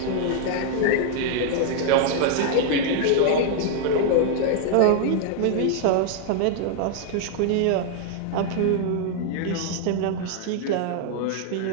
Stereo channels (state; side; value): different; both; correlation 0.00